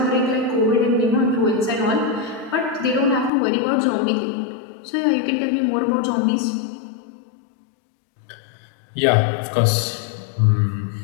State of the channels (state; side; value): drops out; right; at 3.3 s